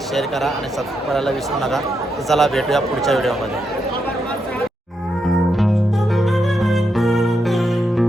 शेअर करा आणि सबस्क्राईब करायला विसरू नका. तर चला भेटूया पुढच्या व्हिडिओमध्ये.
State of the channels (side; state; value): both; normal; correlation 0.83